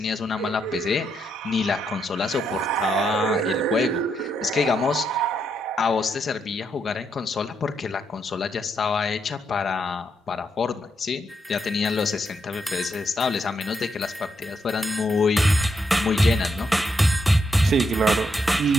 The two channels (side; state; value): both; normal; correlation 0.79